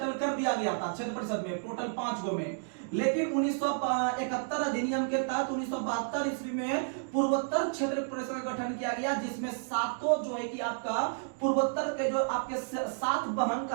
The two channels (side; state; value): left; silent; digital silence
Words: कर दिया गया था क्षेत्र परिषद में, टोटल 5 गो में। लेकिन 1971 अधिनियम के तहत 1972 ईस्वी में पूर्वोत्तर क्षेत्र परिषद का गठन किया गया, जिसमें 7 जो है कि आपका पूर्वोत्तर के जो आपके 7 बहन